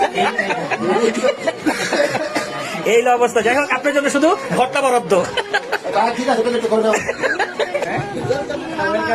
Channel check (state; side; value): identical; both; correlation 1.00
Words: এই অবস্থা। যাই হোক, আপনার জন্য শুধু ঘরটা বরাদ্দ। ঠিক আছে করে দাও।